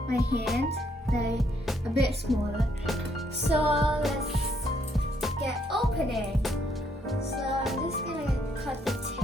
my hand, like a bit smaller. So let's get opening. So I'm just gonna cut the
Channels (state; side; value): normal; both; correlation 0.71